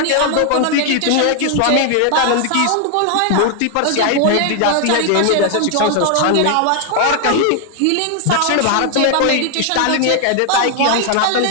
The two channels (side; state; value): both; different; correlation 0.00